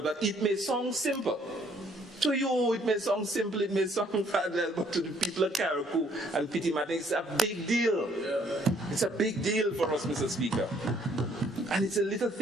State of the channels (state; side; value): normal; both; correlation 0.64